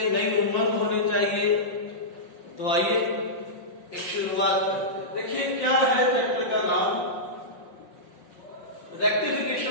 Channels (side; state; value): right; late; 5.5 ms